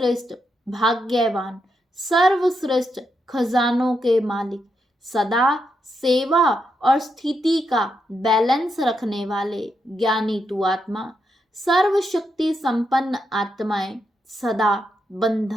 भाग्यवान, सर्वश्रेष्ठ खजानों के मालिक, सदा सेवा और स्थिति का बैलेंस रखने वाले ज्ञानी तू आत्मा, सर्वशक्ति संपन्न आत्माएं, सदा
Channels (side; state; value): both; normal; correlation 0.82